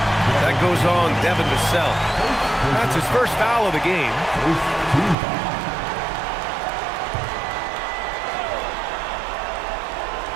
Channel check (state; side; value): drops out; left; at 5.2 s